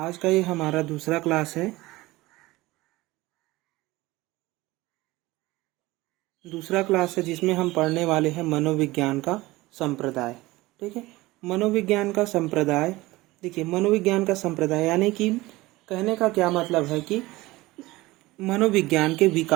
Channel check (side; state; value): left; quieter; 19.6 dB